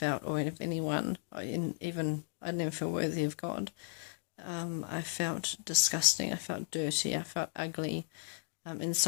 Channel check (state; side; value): silent; right; digital silence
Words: or of anyone. I didn't even feel worthy of God. I felt disgusting. I felt dirty. I felt ugly,